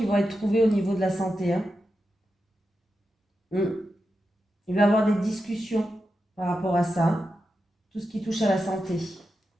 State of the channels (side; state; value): both; normal; correlation 0.89